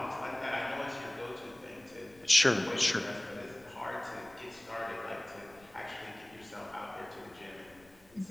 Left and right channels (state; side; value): noise; left; rumble, 27 dB below the sound